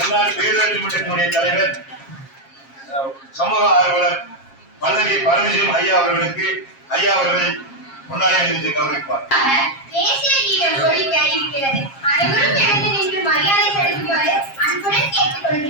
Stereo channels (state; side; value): late; right; 7.4 ms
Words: பேரூராட்சி மன்றத்தினுடைய தலைவர் சமூக ஆர்வலர் பல்லவி பரமசிவம் ஐயா அவர்களுக்கு ஐயா அவர்கள் பொன்னாடை அணிவித்து கௌரவிப்பார். தேசிய கீதம் ஒலிக்க இருக்கிறது. அனைவரும் எழுந்து நின்று மரியாதை செலுத்துமாறு அன்புடன் கேட்டுக்